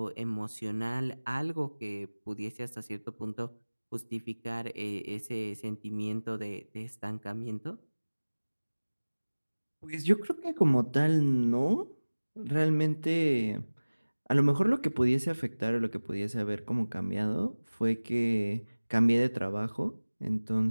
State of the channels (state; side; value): inverted; both; correlation -1.00